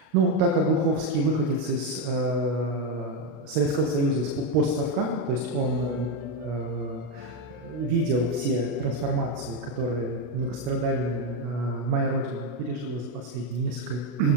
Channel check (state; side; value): late; left; 32 ms